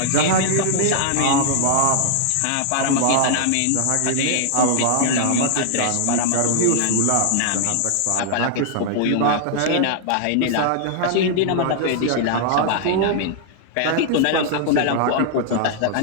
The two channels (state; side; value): different; both; correlation 0.00